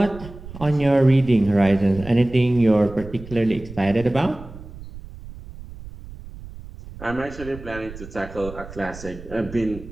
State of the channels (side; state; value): right; noise; rumble, 15 dB below the sound